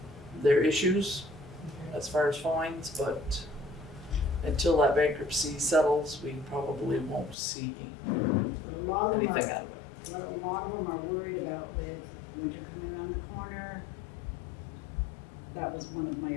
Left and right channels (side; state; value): right; drops out; at 7.4 s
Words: their issues as far as fines, but until that bankruptcy settles, we probably won't see But a lot of them anything are, out of it. a lot of them are worried about with winter coming around the corner. That was one of